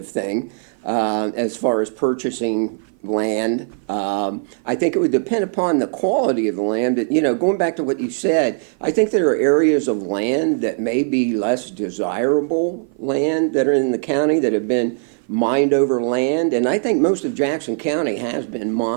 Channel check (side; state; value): left; silent; 55 dB below the other